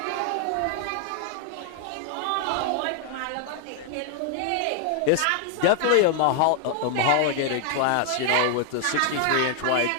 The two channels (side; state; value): both; different; correlation 0.00